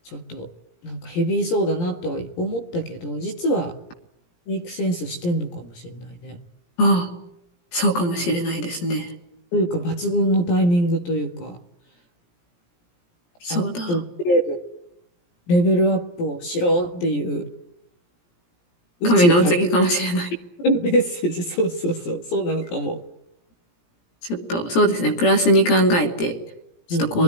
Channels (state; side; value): late; right; 17 ms